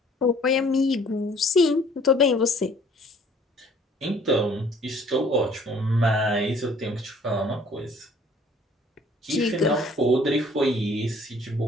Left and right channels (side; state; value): both; normal; correlation 0.56